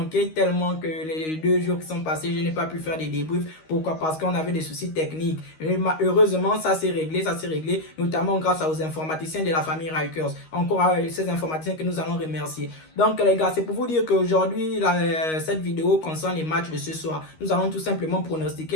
tellement que les 2 jours qui sont passés, je n'ai pas pu faire des débriefs. Pourquoi? Parce qu'on avait des soucis techniques. Et heureusement, ça s'est réglé, notamment grâce aux informaticiens de la famille Rikers. Encore ces informaticiens que nous allons remercier. Donc les gars, c'est pour vous dire qu'aujourd'hui, cette vidéo concerne les matchs de ce soir. Nous allons tout simplement pronostiquer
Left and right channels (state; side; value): late; right; 13 ms